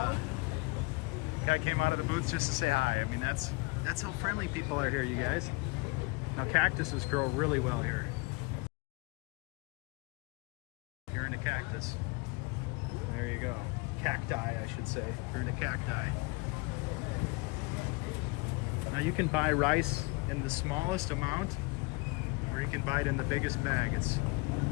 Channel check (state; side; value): quieter; right; 27.2 dB